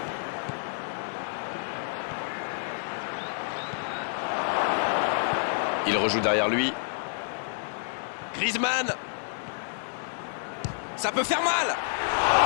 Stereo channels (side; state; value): right; silent; digital silence